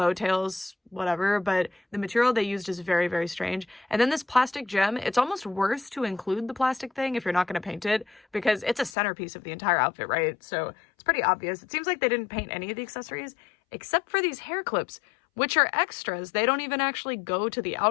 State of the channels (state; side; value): drops out; right; at 8.9 s